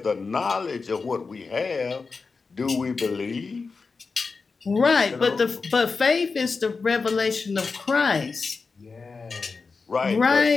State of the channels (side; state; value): right; quieter; 4.5 dB